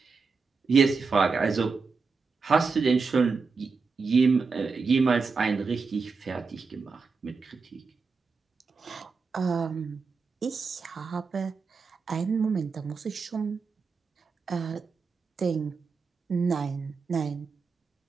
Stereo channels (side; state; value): left; quieter; 4.8 dB